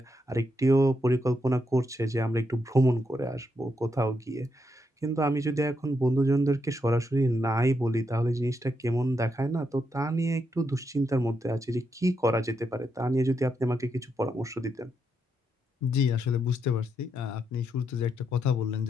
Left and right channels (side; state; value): both; normal; correlation 0.81